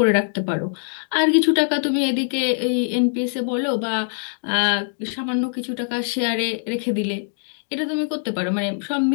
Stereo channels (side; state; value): right; silent; digital silence